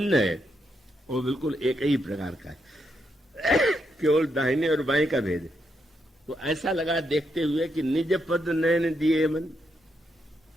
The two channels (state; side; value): normal; both; correlation 0.81